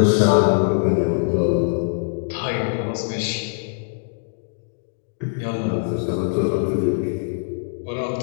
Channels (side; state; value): right; silent; digital silence